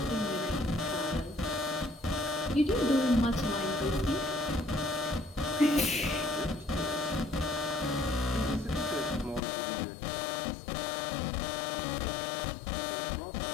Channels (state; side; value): drops out; right; at 9.4 s